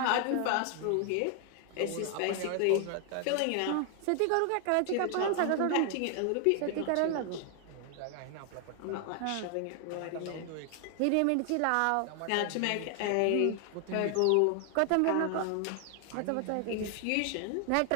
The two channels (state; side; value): different; both; correlation 0.00